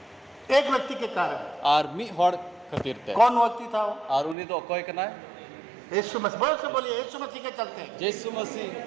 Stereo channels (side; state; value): left; drops out; at 4.4 s